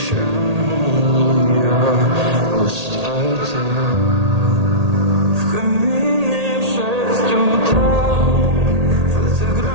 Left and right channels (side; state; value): left; late; 1.8 ms